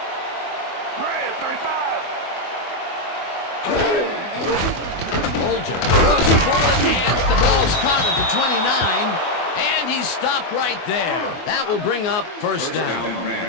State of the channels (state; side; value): late; right; 24 ms